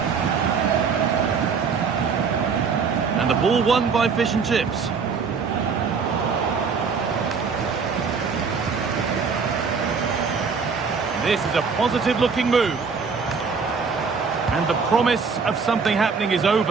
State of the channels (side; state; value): left; quieter; 5.4 dB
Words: And the ball won by Fish and Chips. This is a positive-looking move. And the promise of something happening is